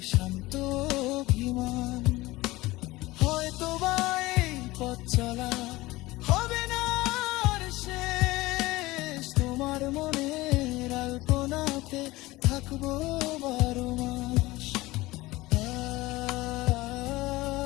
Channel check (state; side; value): quieter; right; 19.6 dB